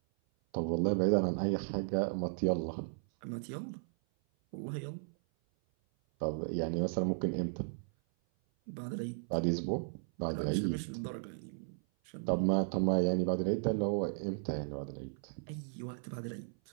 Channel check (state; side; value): silent; left; 54 dB below the other